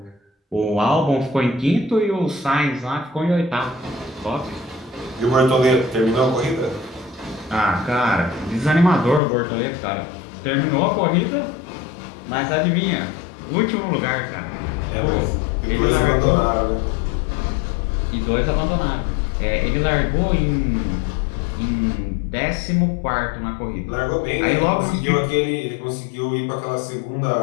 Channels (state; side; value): drops out; right; at 9.2 s